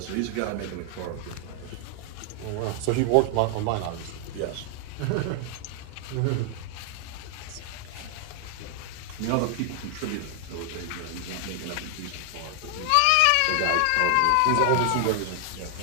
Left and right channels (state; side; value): different; both; correlation 0.00